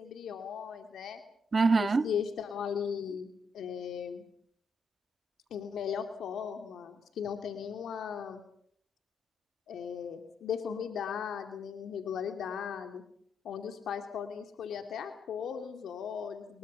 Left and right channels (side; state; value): both; normal; correlation 0.78